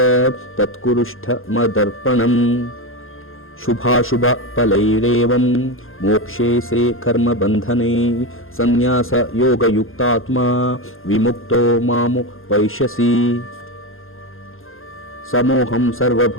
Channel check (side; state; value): right; late; 0.60 ms